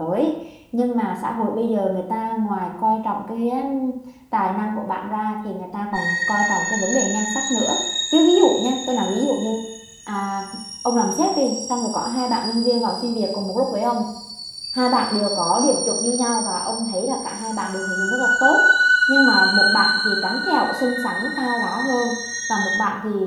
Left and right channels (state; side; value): identical; both; correlation 1.00